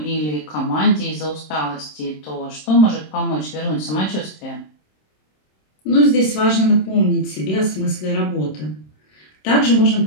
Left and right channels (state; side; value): late; right; 26 ms